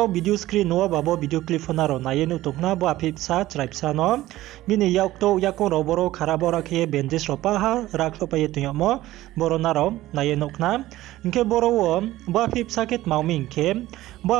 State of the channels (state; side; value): quieter; left; 15.9 dB